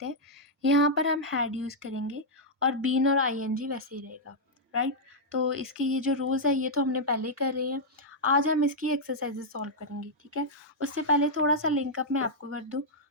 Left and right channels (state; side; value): normal; both; correlation -0.05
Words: हैं, यहाँ पर हम हैड यूज़ करेंगे और बीन और आईएनजी वैसे ही रहेगा, राइट? तो इसके ये जो रूल्स है ये तो हमने पहले ही कर रहे हैं. आज हम इसकी एक्सरसाइजेस सॉल्व करेंगे, ठीक है? उससे पहले थोड़ा सा लिंकअप मैं आपको कर दूँ,